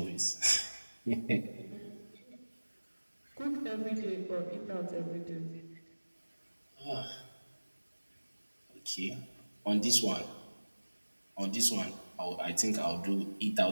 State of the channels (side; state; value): both; inverted; correlation -1.00